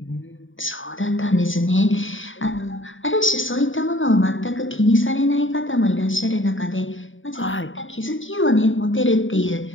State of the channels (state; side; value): late; right; 0.57 ms